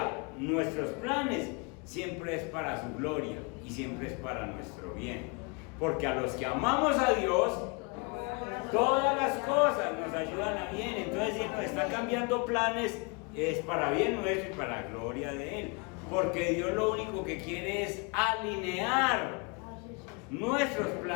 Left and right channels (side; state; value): right; quieter; 31.6 dB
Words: nuestros planes, siempre es para su gloria y siempre es para nuestro bien. Porque a los que amamos a Dios, todas las cosas nos ayudan a bien. Entonces, si nos está cambiando planes, es para bien nuestro y para la gloria de Él. Porque Dios lo único que quiere es alinear nuestros